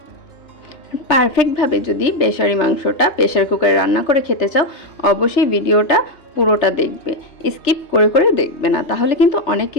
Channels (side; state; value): right; late; 3.3 ms